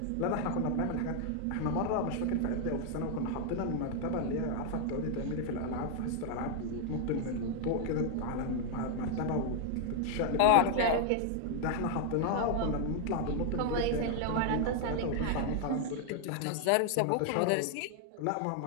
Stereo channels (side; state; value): both; different; correlation 0.00